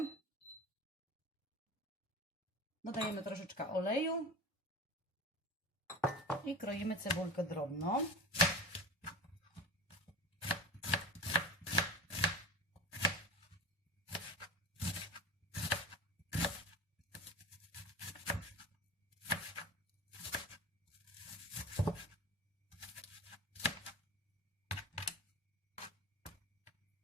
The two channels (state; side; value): normal; both; correlation 0.33